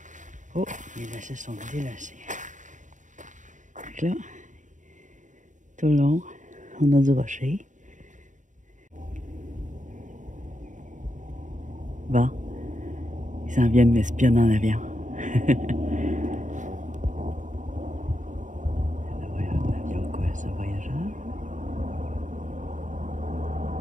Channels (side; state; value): left; late; 0.36 ms